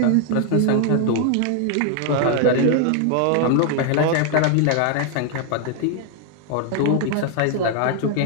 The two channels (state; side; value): different; both; correlation 0.00